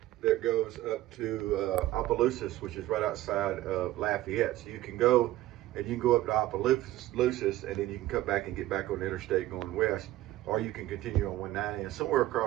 that goes up to Opelousas, which is right outside of Lafayette. So you can go and you can go up to Opelousas, and then you can come back and get back on the interstate going west, or you can continue on 190, and somewhere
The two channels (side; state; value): left; quieter; 15.4 dB